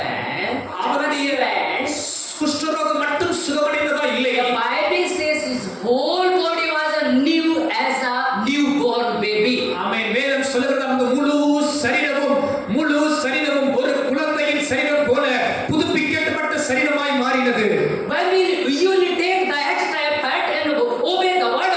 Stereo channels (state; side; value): identical; both; correlation 1.00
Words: அவனுடைய குஷ்டரோகம் மட்டும் சுகமடைந்ததா இல்லை. the Bible says his whole body was new as a newborn baby. ஆமென். வேதம் சொல்கிறது அந்த முழு சரீரமும் ஒரு குழந்தையின் சரீரம் போல புதுப்பிக்கப்பட்ட சரீரமாய் மாறினது. When you will take the extra effort and obey the word